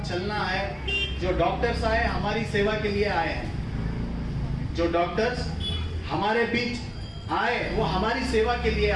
चलना है। जो डॉक्टर्स आए हमारी सेवा के लिए आए हैं, जो डॉक्टर्स हमारे बीच आए, वो हमारी सेवा के लिए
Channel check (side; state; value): both; identical; correlation 1.00